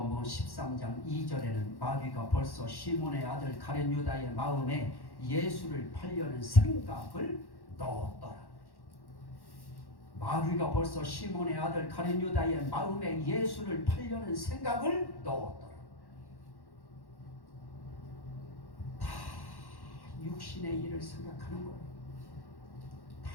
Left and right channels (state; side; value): late; right; 1.1 ms